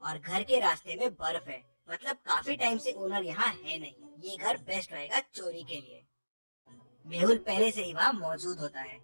और घर के रास्ते में बर्फ है, मतलब काफी टाइम से ओनर यहाँ है नहीं। ये घर बेस्ट रहेगा चोरी के लिए। मेहुल पहले से ही वहाँ मौजूद होता है।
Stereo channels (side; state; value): both; inverted; correlation -1.00